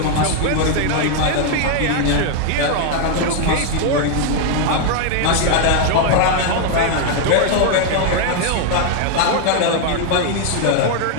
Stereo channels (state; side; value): different; both; correlation 0.00